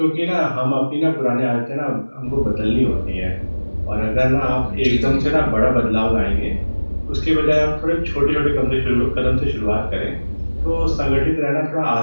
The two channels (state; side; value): inverted; both; correlation -1.00